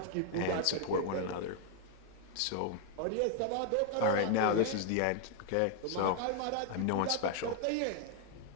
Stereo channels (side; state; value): both; different; correlation 0.00